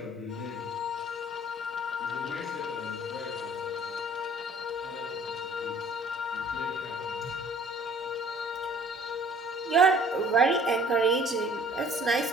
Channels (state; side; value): normal; both; correlation 0.54